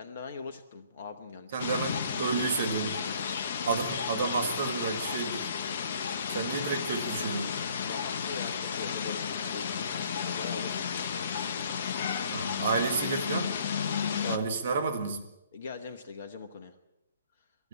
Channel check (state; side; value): inverted; both; correlation -0.58